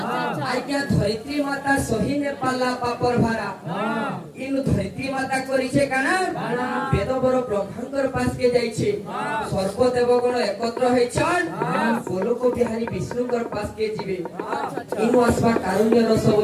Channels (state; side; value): identical; both; correlation 1.00